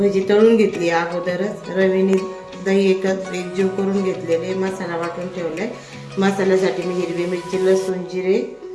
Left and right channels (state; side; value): identical; both; correlation 1.00